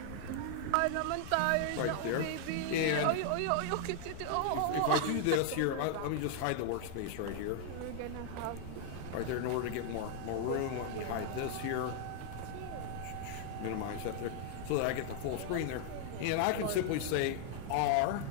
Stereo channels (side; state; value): both; different; correlation 0.00